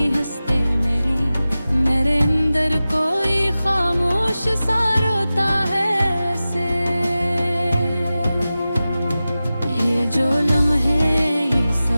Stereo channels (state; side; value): inverted; both; correlation -0.95